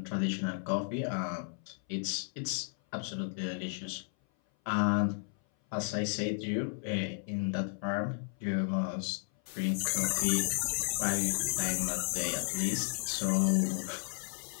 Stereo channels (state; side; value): silent; right; 55 dB below the other